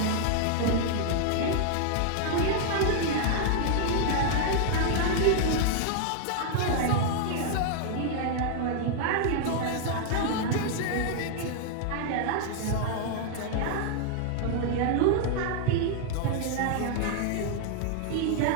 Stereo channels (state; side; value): different; both; correlation 0.00